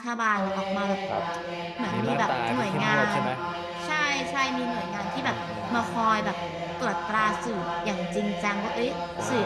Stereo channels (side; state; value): both; identical; correlation 1.00